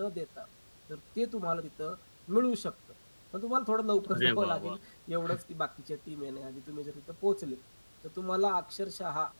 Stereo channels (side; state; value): both; inverted; correlation -1.00